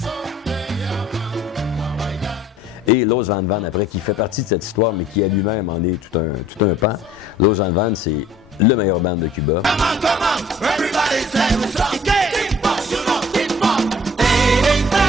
Et Los Van Van, après, qui fait partie de cette histoire, mais qui à lui-même en est tout un pan. Los Van Van, c'est le meilleur band de Cuba.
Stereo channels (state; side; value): normal; both; correlation 0.52